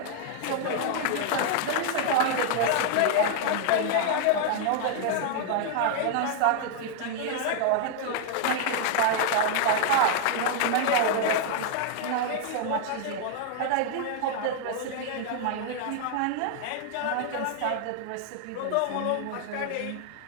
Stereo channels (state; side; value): different; both; correlation 0.00